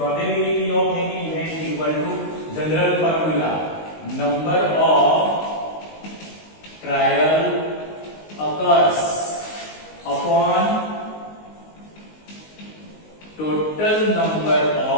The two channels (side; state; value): right; late; 19 ms